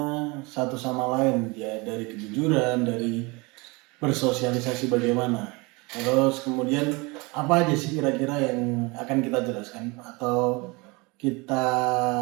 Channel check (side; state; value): left; quieter; 26.3 dB